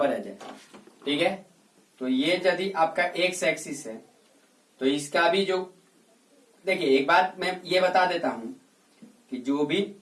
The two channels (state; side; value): identical; both; correlation 1.00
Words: आ जाए, ठीक है, तो ये यदि आपका एक्स एक्सिस है, तो इसका भी जो देखिए एक बात मैं ये बता देता हूं कि